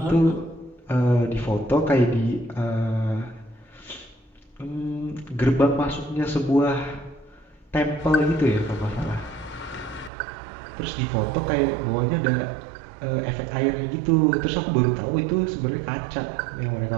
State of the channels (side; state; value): left; drops out; at 10.1 s